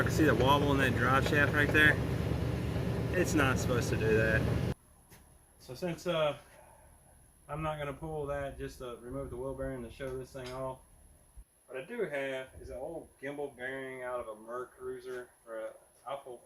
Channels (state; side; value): identical; both; correlation 1.00